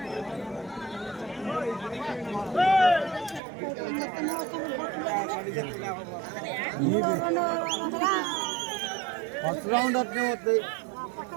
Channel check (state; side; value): drops out; left; at 3.4 s